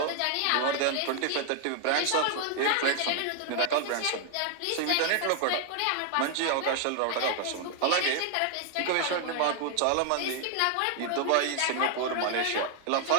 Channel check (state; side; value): different; both; correlation 0.00